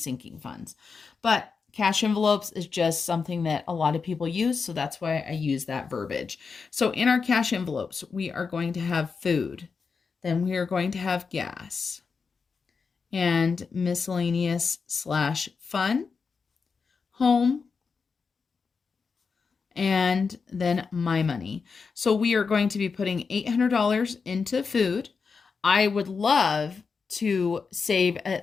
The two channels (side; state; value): right; quieter; 5.2 dB